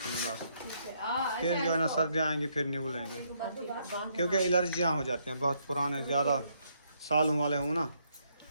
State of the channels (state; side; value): inverted; both; correlation -0.73